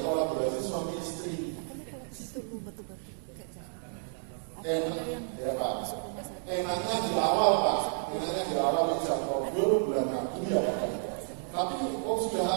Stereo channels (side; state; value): left; silent; 57 dB below the other